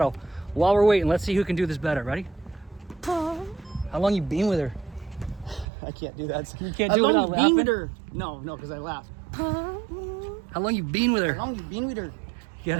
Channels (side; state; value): left; drops out; at 5.7 s